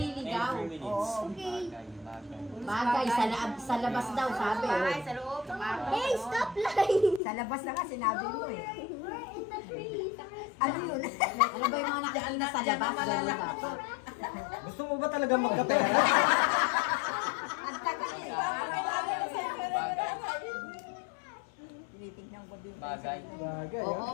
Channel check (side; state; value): right; drops out; at 7.2 s